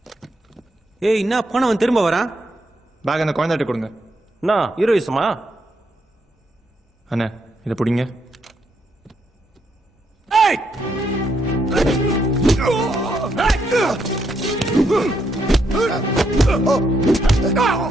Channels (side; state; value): both; normal; correlation 0.77